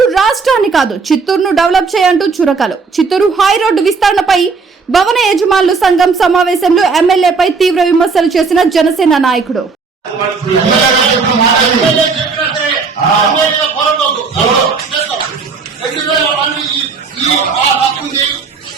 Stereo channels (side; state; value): left; quieter; 4.8 dB